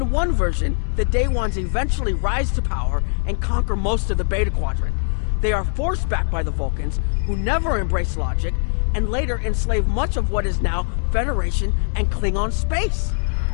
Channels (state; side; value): silent; right; 61 dB below the other